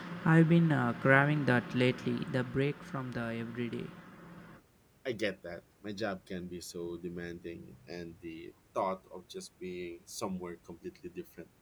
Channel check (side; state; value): both; identical; correlation 1.00